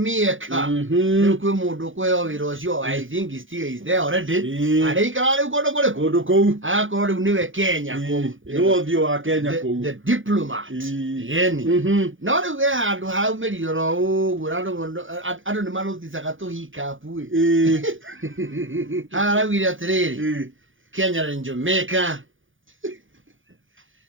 rĩu kwĩ mũndũ kwĩyo wĩra ũcio I think he still is there already araikara rĩu kũndũ kũu agakorwo rĩu nĩwe Kenya kũu nĩwe ũthiũ wa Kenya kũu the diplomat yeni no rĩu we handũ haumĩrire ro ũguo andũ nĩ maruticaga tũhikapu araugire atĩrĩrĩ Kenya and Jamaica,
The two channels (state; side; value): late; left; 0.57 ms